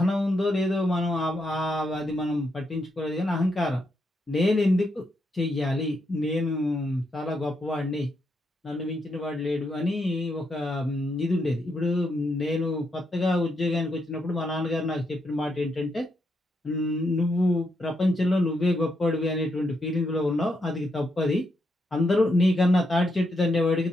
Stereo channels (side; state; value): both; normal; correlation 0.80